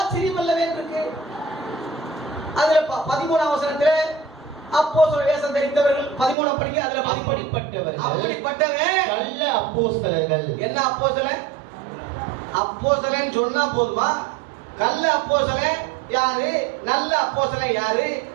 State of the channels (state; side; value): drops out; left; at 6.4 s